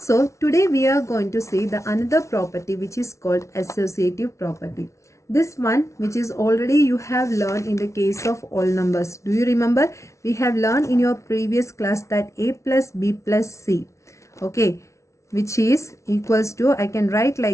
today we are going to see the another property which is called associative property. This one which is already you have learned in the case of all numbers. Do you remember? We have learned in your previous class that a plus b plus c, okay, which is equals to, I can write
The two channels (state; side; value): late; right; 0.14 ms